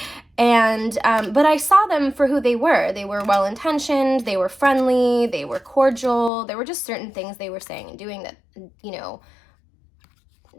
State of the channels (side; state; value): right; drops out; at 6.3 s